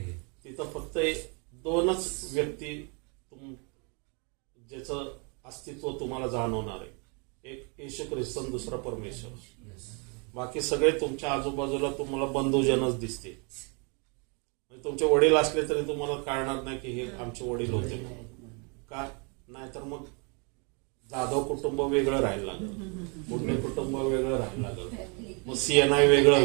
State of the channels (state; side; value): quieter; left; 34.5 dB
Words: तिथं. फक्त दोनच व्यक्ती ज्याचं अस्तित्व तुम्हाला जाणवणार आहे, एक येशू ख्रिस्त आणि दुसरा परमेश्वर. बाकी सगळे तुमच्या आजूबाजूला तुम्हाला बंधूजनच दिसते. म्हणजे तुमचे वडील असले तरी तुम्हाला कळणार नाही की हे आमचे वडील होते म्हणून. का नाहीतर मग जाधव कुटुंब वेगळं राहायला लागलं, पुणे कुटुंब वेगळं राहायला लागलं, मग सीएनआय वेगळं